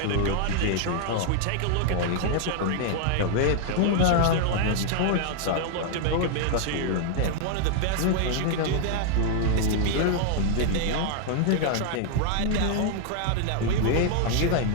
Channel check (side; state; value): both; different; correlation 0.00